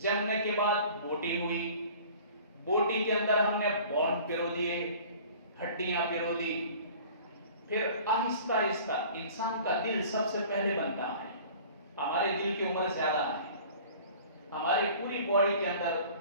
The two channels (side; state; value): both; inverted; correlation -0.46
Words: کے بعد بوٹی ہوئی، بوٹی کے اندر ہم نے بون پیرو دیے، ہڈیاں پیرو دی، پھر آہستہ آہستہ انسان کا دل سب سے پہلے بنتا ہے۔ ہمارے دل کی عمر زیادہ ہے، ہماری پوری باڈی کے اندر